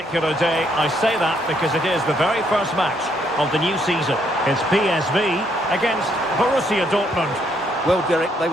day. I say that because it is the very first match of the new season. It's PSV against Borussia Dortmund. Well, Derek, they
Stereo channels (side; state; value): both; normal; correlation 0.71